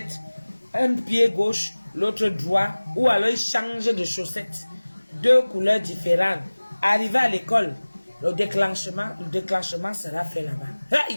un pied gauche, l'autre droit, ou alors il change de chaussette. Deux couleurs différentes. Arrivé à l'école, le déclenchement sera fait là-bas.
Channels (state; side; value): inverted; both; correlation -1.00